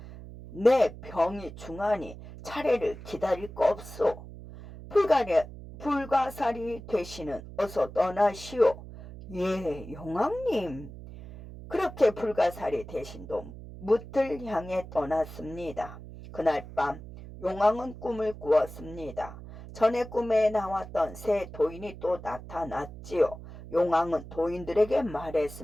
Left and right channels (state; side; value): noise; right; hum, 14 dB below the sound